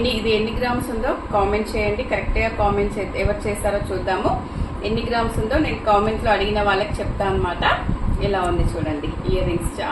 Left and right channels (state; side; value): identical; both; correlation 1.00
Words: ఎన్ని గ్రామ్స్ ఉందో కామెంట్ చేయండి. కరెక్ట్గా కామెంట్ ఎవరు చేస్తారో చూద్దాము. ఎన్ని గ్రామ్స్ ఉందో నేను కామెంట్లో అడిగిన వాళ్ళకి చెప్తాను అనమాట. ఇలా ఉంది చూడండి. ఇయర్ రింగ్స్